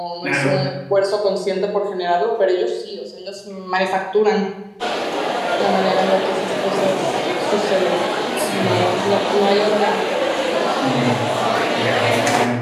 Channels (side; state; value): both; identical; correlation 1.00